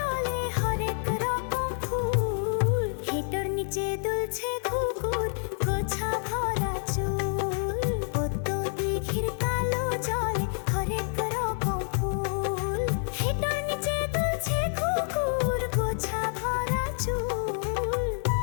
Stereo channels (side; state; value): right; silent; 59 dB below the other